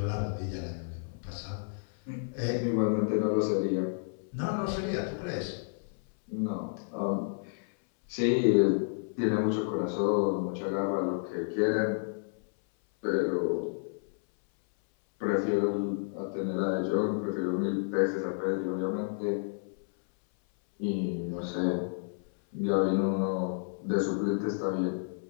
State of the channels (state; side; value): silent; right; 57 dB below the other